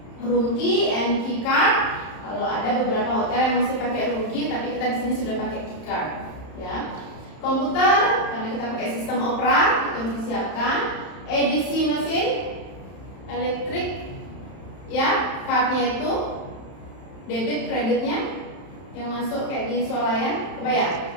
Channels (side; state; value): right; late; 31 ms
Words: Room key and key card. Kalau ada beberapa hotel yang masih pakai room key, tapi kita di sini sudah pakai key card, ya. Komputer, karena kita pakai sistem Opera, itu harus disiapkan. EDC mesin, elektrik, ya, cardnya itu debit kreditnya yang masuk kayak di swalayan,